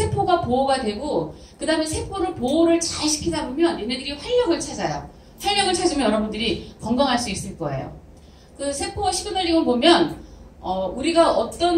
보호가 되고 그 다음에 세포를 보호를 잘 시키다 보면 얘네들이 활력을 찾아요. 활력을 찾으면 여러분들이 건강할 수 있을 거예요. 그 세포 시그널링을 보면 우리가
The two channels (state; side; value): identical; both; correlation 1.00